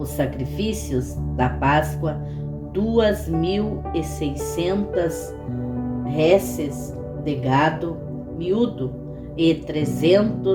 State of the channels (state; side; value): identical; both; correlation 1.00